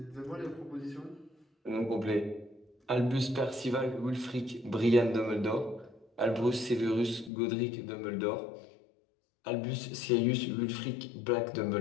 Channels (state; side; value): drops out; right; at 7.3 s